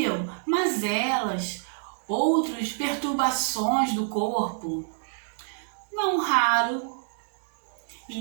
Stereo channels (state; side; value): silent; left; digital silence